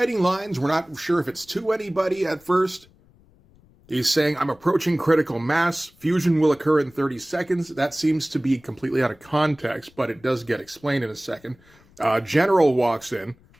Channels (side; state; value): left; noise; rumble, 29 dB below the sound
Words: lines. We're not sure if it's to anybody at first. He's saying, I'm approaching critical mass. Fusion will occur in 30 seconds. That seems to be completely out of context, but it does get explained in a second. General walks in,